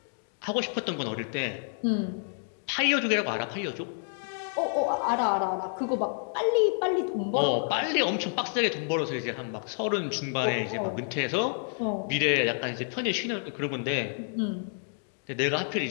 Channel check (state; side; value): silent; right; 56 dB below the other